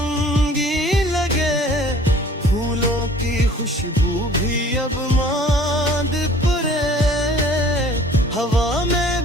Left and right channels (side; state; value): both; normal; correlation 0.51